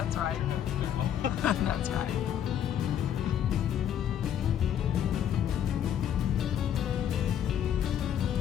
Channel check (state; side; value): quieter; right; 9.6 dB